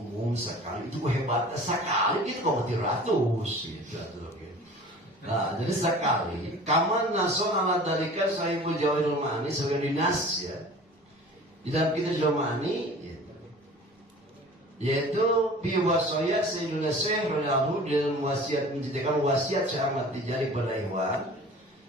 sekali itu hebatnya sekali gitu kok 300 gitu. Nah, jadi sekali kaman nason ala dalika sahibul jawahirul ma'ani sebagai dinas ya. Di dalam kitab Jawahirul Ma'ani yaitu biwasaya Sayyidina Syekh radhiyallahu dalam wasiat menceritakan wasiat Syekh Ahmad Tijani pada ikhwan,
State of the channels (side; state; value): both; normal; correlation 0.43